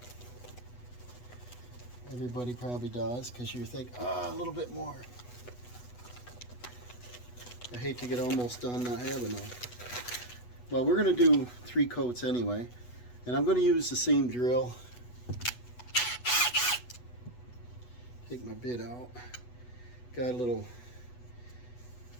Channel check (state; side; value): late; right; 8.1 ms